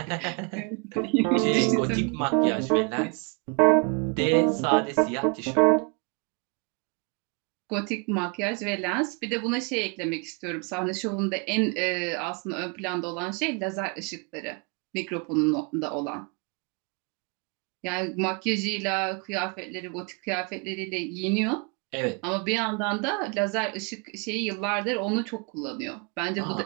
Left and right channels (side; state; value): left; quieter; 33.6 dB